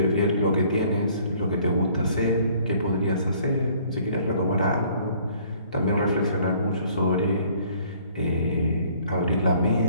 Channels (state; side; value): inverted; both; correlation -0.58